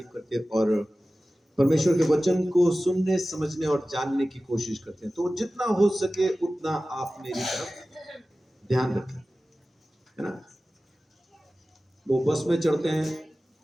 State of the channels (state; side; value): normal; both; correlation 0.96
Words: करते और परमेश्वर के वचन को सुनने, समझने और जानने की कोशिश करते हैं। तो जितना हो सके उतना आप मेरी तरफ ध्यान रखें, है ना। वो बस में चढ़ते हैं,